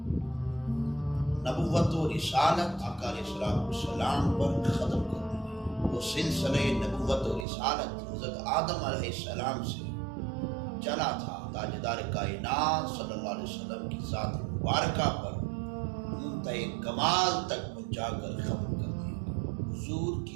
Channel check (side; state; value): left; drops out; at 7.5 s